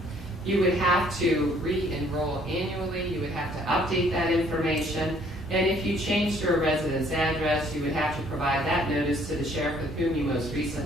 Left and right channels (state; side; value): normal; both; correlation 0.61